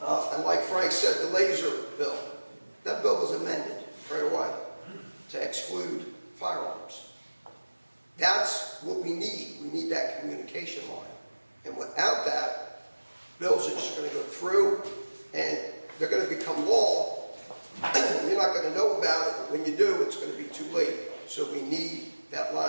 and like Frank said, the laser bill. That bill was amended right away to exclude firearms. firearms. That's what we need. We need that communication line. And without that, bills are just going to go through and they're going to become law. You're not going to know about it, but when you do, it's going to be too late. So we need that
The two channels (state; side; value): inverted; both; correlation -1.00